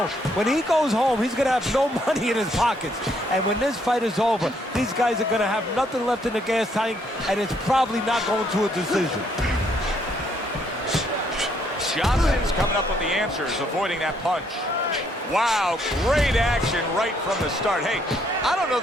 when he goes home, he's going to have no money in his pockets. And when this fight is over, these guys are going to have nothing left in the gas tank, and it's probably not going to a decision. Johnson's coming up with the answers, avoiding that punch. Wow, great action right from the start. Hey, I don't know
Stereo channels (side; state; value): both; normal; correlation 0.70